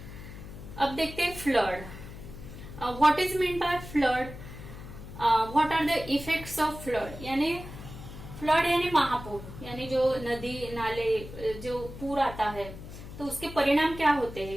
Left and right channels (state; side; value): noise; left; hum, 13 dB below the sound